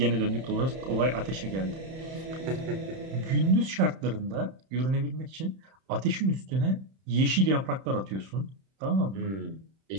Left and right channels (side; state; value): left; late; 31 ms